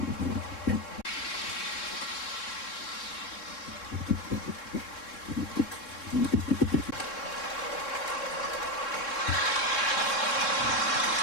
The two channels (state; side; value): late; right; 3.7 ms